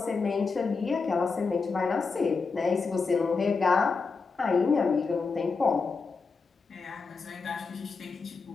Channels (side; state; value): right; quieter; 4.6 dB